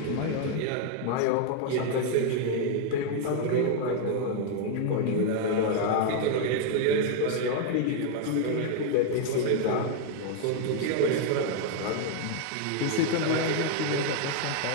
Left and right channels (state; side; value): different; both; correlation 0.00